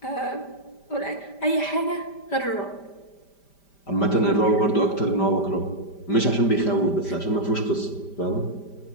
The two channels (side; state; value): right; late; 5.1 ms